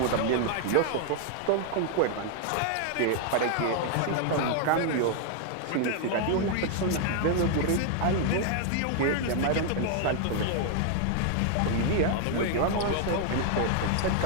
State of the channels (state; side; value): different; both; correlation 0.00